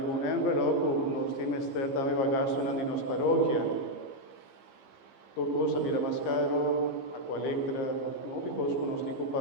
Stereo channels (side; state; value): right; late; 15 ms